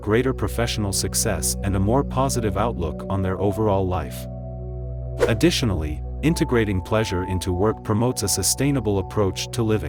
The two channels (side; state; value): both; identical; correlation 1.00